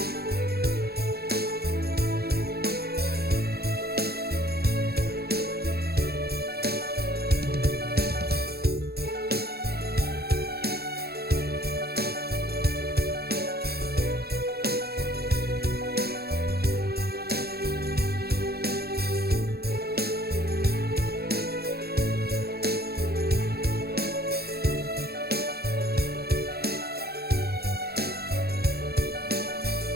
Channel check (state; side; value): late; left; 0.46 ms